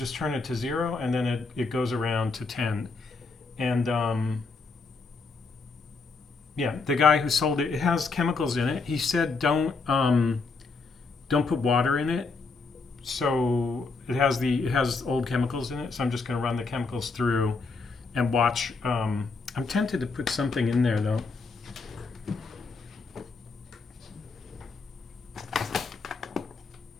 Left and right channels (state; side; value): quieter; right; 4.2 dB